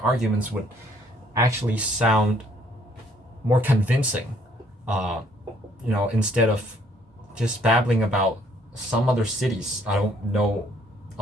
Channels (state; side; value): normal; both; correlation 0.64